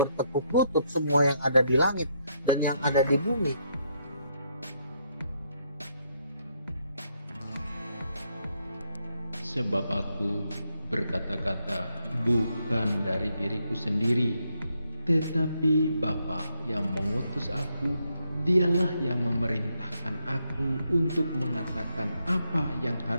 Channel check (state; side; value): inverted; both; correlation -0.77